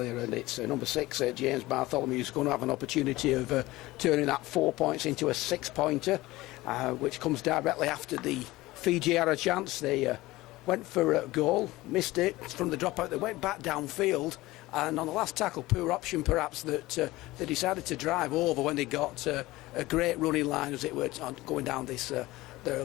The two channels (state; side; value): quieter; right; 18.8 dB